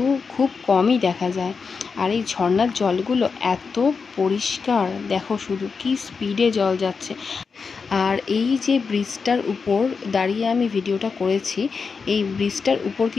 খুব কমই দেখা যায়। আর এই ঝর্ণার জলগুলো এত পরিষ্কার, দেখো শুধু কি স্পিডে জল যাচ্ছে। আর এই যে ব্রিজটার উপর দাঁড়িয়ে আমি ভিডিওটা করেছি, এই ব্রিজটার উপর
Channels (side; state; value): right; quieter; 5.2 dB